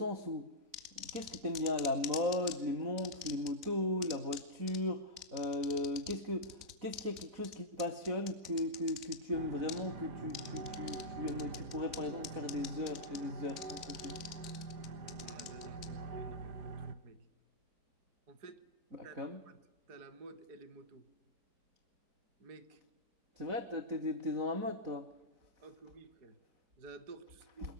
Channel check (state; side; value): late; left; 3.6 ms